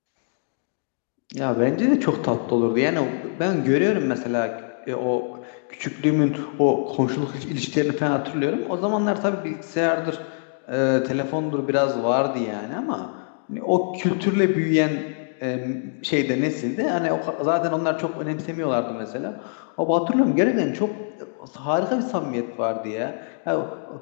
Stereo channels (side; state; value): right; silent; digital silence